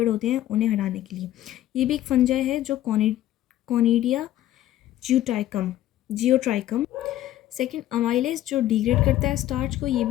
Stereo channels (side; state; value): right; quieter; 13.4 dB